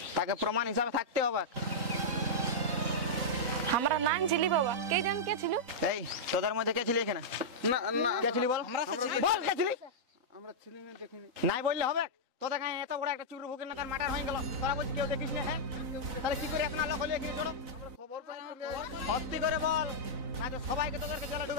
তাকে প্রমাণ হিসাবে থাকতে হবে আমরা নাম ছিলি বাবা কে জান কে ছিল এই তোদের মধ্যে কে ছিলি এখানে না না কে ছিলি বল বল কে ছিলি আমরা ছিলি না দেখিনি নাই বললে হবে তোদের কাছে এত বড় একটা চুরু ভুকের না তার মার্ডার হয়ে গেল তোরা বলছিস কেউ দেখিস না হ্যাঁ তাহলে কি করে এখন লোক হলে কি চলো খবর পাই সত্যি করে বল না তো সবাইকে তোদেরকে জেলে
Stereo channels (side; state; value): left; late; 4.0 ms